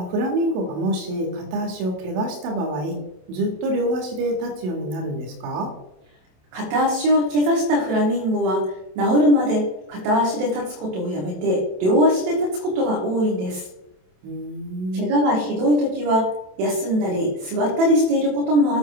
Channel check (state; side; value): late; left; 27 ms